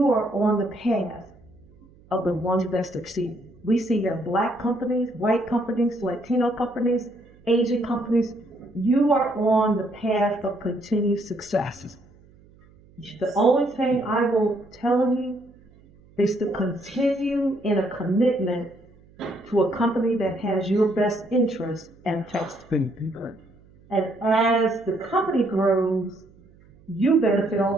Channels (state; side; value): noise; right; hum, 27 dB below the sound